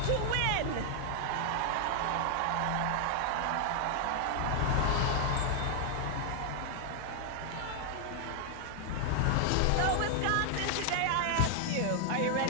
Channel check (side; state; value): both; different; correlation 0.00